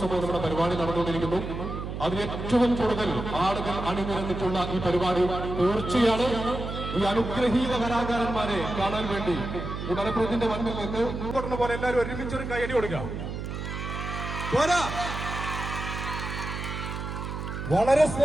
നമ്മുടെ പരിപാടി നടന്നുകൊണ്ടിരിക്കുന്നു. അതിൽ ഏറ്റവും കൂടുതൽ ആളുകൾ അണിനിരന്നിട്ടുള്ള ഈ പരിപാടി തീർച്ചയാണ് ഈ അനുഗ്രഹീത കലാകാരന്മാരെ കാണാൻ വേണ്ടി ഈ മലപ്പുറത്തിന്റെ മണ്ണിൽ നിന്ന് കൊടുക്കുന്ന പോലെ എല്ലാവരും ഒരുമിച്ചൊരു കൈയടി കൊടുക്കുക. വളരെ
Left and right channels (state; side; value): noise; right; hum, 6 dB below the sound